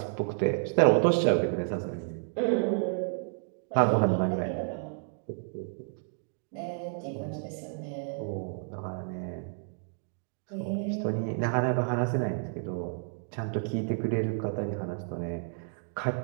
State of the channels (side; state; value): left; silent; 57 dB below the other